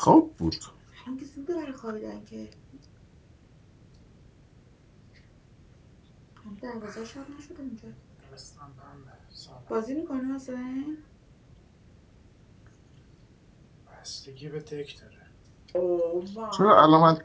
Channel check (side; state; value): both; identical; correlation 1.00